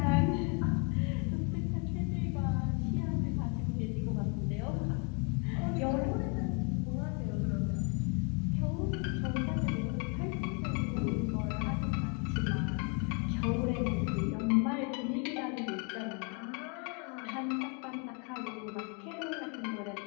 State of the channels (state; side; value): quieter; right; 35.4 dB